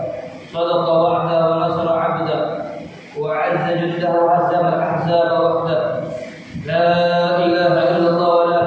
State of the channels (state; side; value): identical; both; correlation 1.00